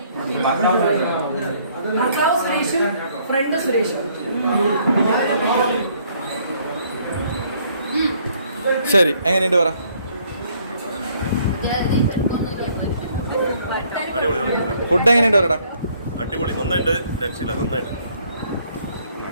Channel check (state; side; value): inverted; both; correlation -0.64